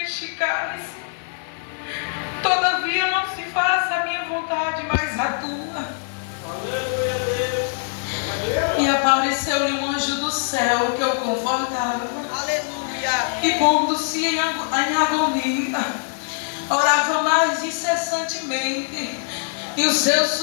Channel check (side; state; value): right; silent; digital silence